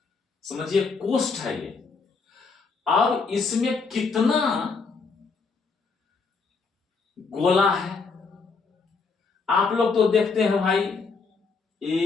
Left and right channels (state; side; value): quieter; right; 4.7 dB